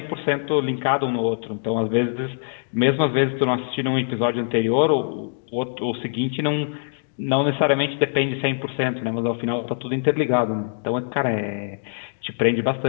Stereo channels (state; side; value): silent; right; digital silence